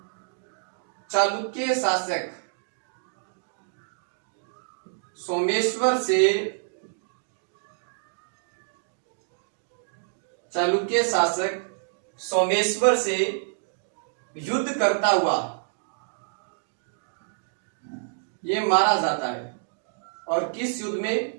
चालुक्य शासक सोमेश्वर से, चालुक्य शासक सोमेश्वर से युद्ध करता हुआ ये मारा जाता है। और किस युद्ध में?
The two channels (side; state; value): left; silent; digital silence